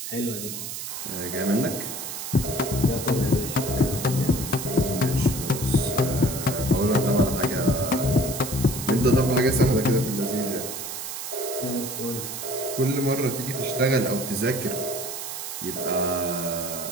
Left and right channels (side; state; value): right; noise; hiss, 7 dB below the sound